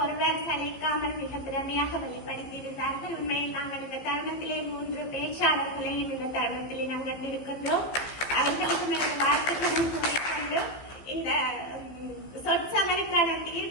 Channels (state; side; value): late; right; 15 ms